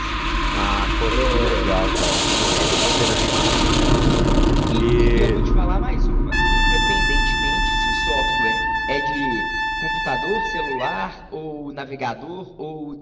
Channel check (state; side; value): identical; both; correlation 1.00